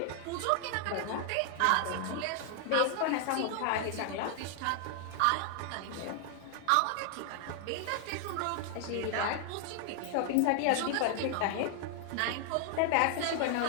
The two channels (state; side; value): different; both; correlation 0.00